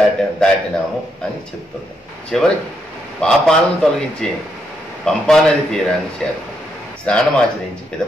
దాటినాము అని చెప్తున్నాం. చివరికి పాపాలను తొలగించే పంపానది తీరాన్ని చేరుతాం. స్నానమాచరించి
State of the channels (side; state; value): both; normal; correlation 0.78